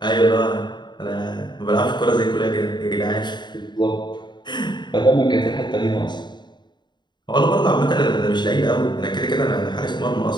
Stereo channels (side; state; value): right; late; 0.21 ms